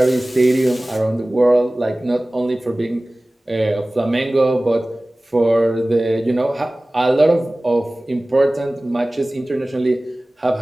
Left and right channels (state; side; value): normal; both; correlation 0.98